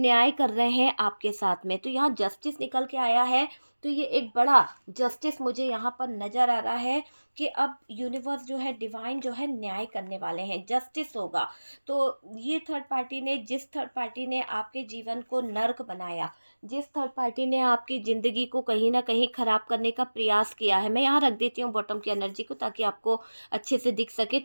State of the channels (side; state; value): both; inverted; correlation -1.00